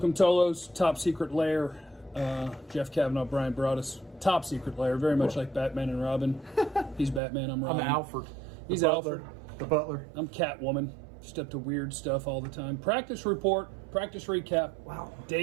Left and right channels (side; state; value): left; drops out; at 7.2 s